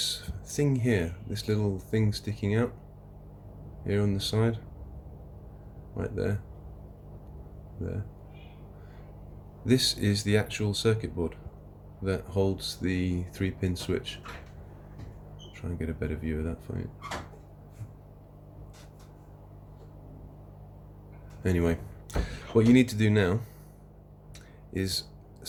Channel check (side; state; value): both; identical; correlation 1.00